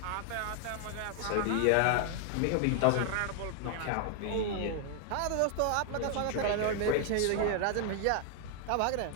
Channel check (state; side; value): different; both; correlation 0.00